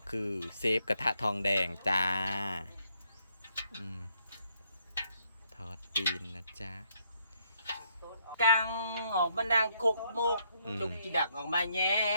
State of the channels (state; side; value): inverted; both; correlation -0.72